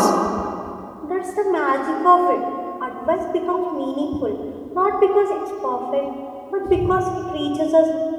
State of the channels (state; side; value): identical; both; correlation 1.00